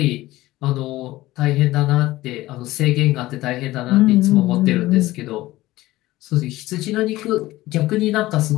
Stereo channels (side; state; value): right; quieter; 17.3 dB